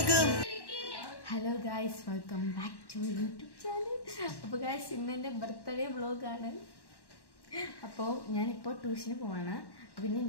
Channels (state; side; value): late; right; 1.1 ms